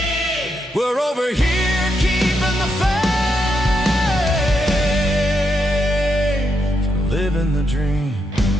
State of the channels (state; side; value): normal; both; correlation 0.81